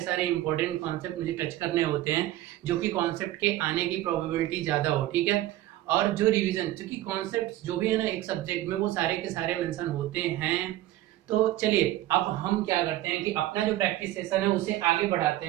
इंपॉर्टेंट कॉन्सेप्ट मुझे टच करने होते हैं, जो कि कॉन्सेप्ट के आने की प्रोबेबिलिटी ज्यादा हो। ठीक है, और जो रिवीजन, क्योंकि कॉन्सेप्ट जो भी है ना एक सब्जेक्ट में, वो सारे के सारे मेंशन होते हैं। तो चलिए अब हम क्या करते हैं कि अपना जो प्रैक्टिस सेशन है उसे आगे बढ़ाते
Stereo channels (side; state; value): left; quieter; 15.0 dB